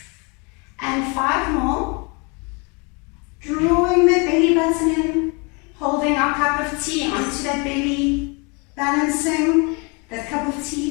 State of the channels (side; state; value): right; quieter; 31.5 dB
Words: And 5 more. Drawing the belly button in, holding our cup of tea onto that belly, balancing that cup of